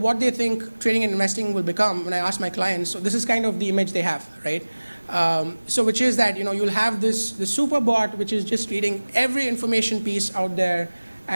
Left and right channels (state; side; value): inverted; both; correlation -1.00